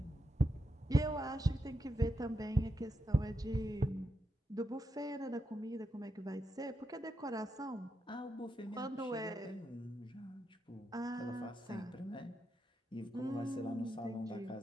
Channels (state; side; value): normal; both; correlation 0.85